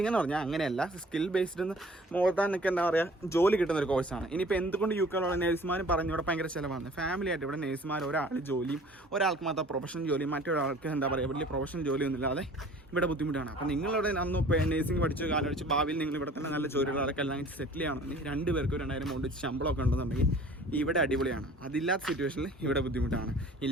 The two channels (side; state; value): both; normal; correlation 0.49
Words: എന്ന് പറഞ്ഞാൽ അങ്ങനെയല്ല. സ്കിൽ ബേസ്ഡ് എന്ന് മോർ ദാൻ നിങ്ങൾക്ക് എന്താ പറയുക, ജോലി കിട്ടുന്ന ഒരു കോഴ്സാണ്. ഇനിയിപ്പോൾ എന്തുകൊണ്ട് UK നേഴ്സുമാർ പറഞ്ഞു ഇവിടെ ഭയങ്കര ചിലവാണ്. ഫാമിലി ആയിട്ട് ഇവിടെ നേഴ്സുമാർ ഒരാൾ ജോലിയും ഒരാൾക്ക് മാത്രം പ്രൊഫഷണൽ ജോലിയും മറ്റൊരാൾക്ക് എന്താ പറയുക വലിയ പ്രൊഫഷണൽ ജോലിയൊന്നും ഇല്ലാതെ ഇവിടെ ബുദ്ധിമുട്ടാണ്. അപ്പോൾ നിങ്ങളിവിടെ അന്ന് നേഴ്സിംഗ് പഠിച്ച് കാലടിച്ച് ഭാവിയിൽ നിങ്ങൾ ഇവിടെ തന്നെ നല്ല ജോലികളൊക്കെ എല്ലാം സെറ്റിൽ ചെയ്യണമെങ്കിൽ 2 പേർക്ക് 2000 എമൗണ്ട് ശമ്പളമൊക്കെ ഉണ്ടെന്നുണ്ടെങ്കിൽ ഇവിടെ അടിപൊളിയാണ്. അതില്ലാത്ത സിറ്റുവേഷനിൽ ഇവിടെ ബുദ്ധിമുട്ടാണ്.